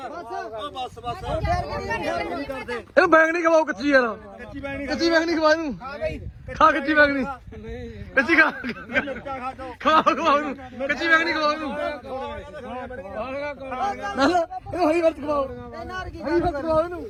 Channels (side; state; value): both; identical; correlation 1.00